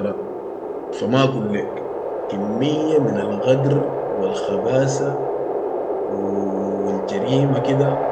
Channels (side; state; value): both; identical; correlation 1.00